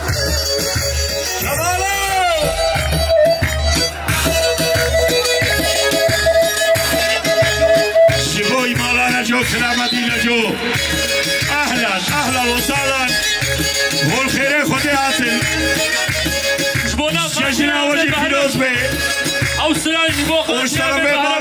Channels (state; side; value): identical; both; correlation 1.00